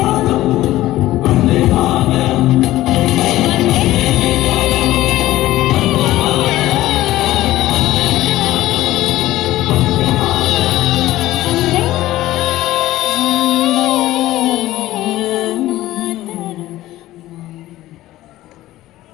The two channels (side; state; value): right; quieter; 15.8 dB